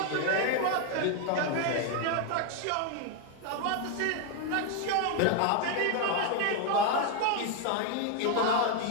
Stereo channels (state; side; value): different; both; correlation 0.01